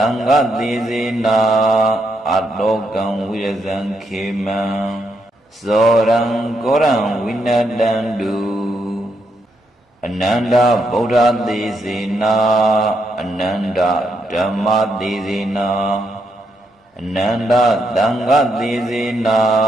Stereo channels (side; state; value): both; normal; correlation 0.79